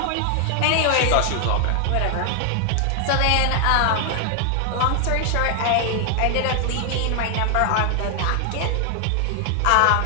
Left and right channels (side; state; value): both; different; correlation 0.00